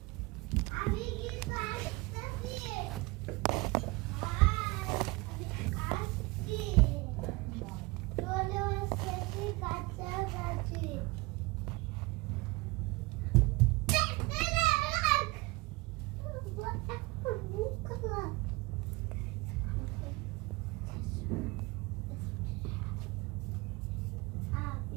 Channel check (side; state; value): left; quieter; 23.3 dB